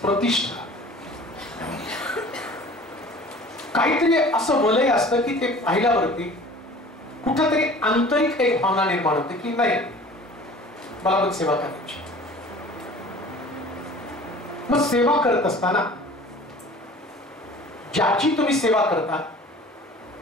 प्रतिष्ठा, काहीतरी असं वलय असतं की ते पाहिल्यावरती कुठंतरी आंतरिक एक भावना निर्माण होते की नाही, मला पण सेवा करायची. मग सेवा करत असताना ज्याची तुम्ही सेवा करता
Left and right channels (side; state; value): both; normal; correlation 0.45